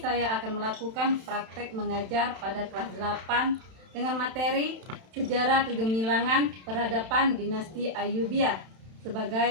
akan melakukan praktek mengajar pada kelas 8 dengan materi Sejarah Kegemilangan Peradaban Dinasti Ayyubiyah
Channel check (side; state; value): left; late; 31 ms